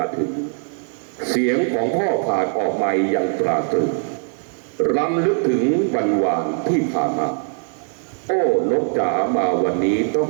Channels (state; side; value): silent; left; 56 dB below the other